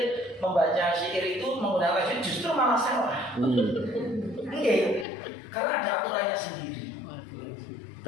syair itu menggunakan tajwid justru malah salah. Oke, karena ada aturannya sendiri.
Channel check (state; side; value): drops out; right; at 5.1 s